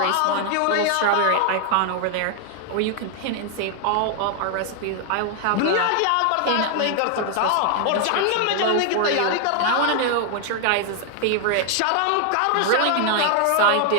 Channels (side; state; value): both; different; correlation 0.00